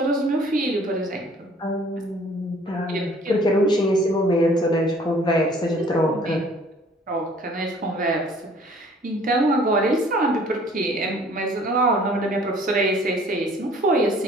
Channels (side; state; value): both; normal; correlation 0.55